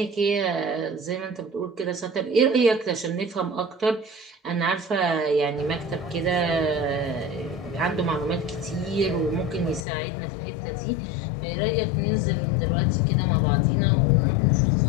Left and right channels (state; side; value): drops out; right; at 9.9 s